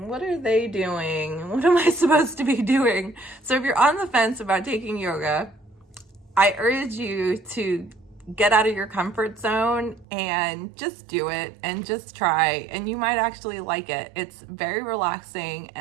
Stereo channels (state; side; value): drops out; left; at 10.1 s